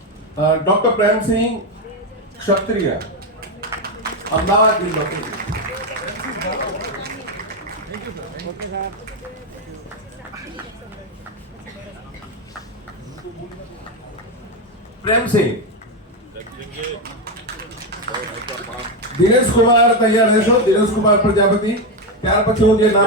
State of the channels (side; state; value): both; normal; correlation 0.09